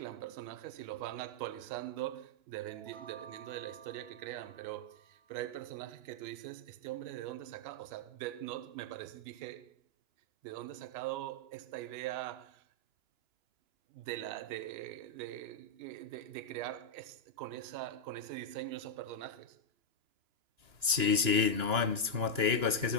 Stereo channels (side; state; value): left; late; 2.9 ms